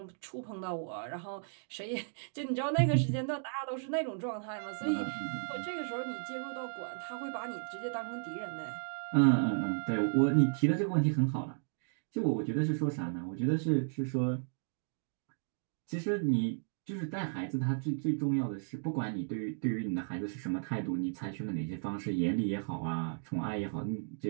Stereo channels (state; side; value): silent; left; digital silence